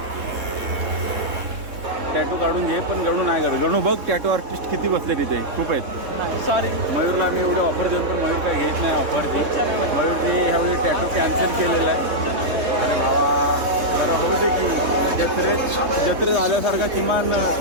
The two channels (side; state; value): left; late; 3.7 ms